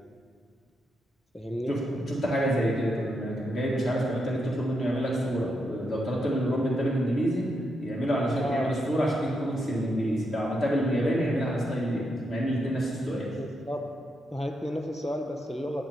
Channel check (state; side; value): normal; both; correlation 0.82